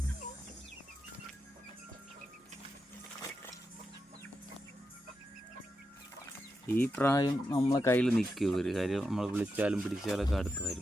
ഈ പ്രായം നമ്മളെ കയ്യിൽ നിൽക്കും. ഒരു കാര്യം നമ്മൾ വിളിച്ചാലും പിടിച്ചാലൊക്കെ അടുത്ത്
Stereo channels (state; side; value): normal; both; correlation 0.87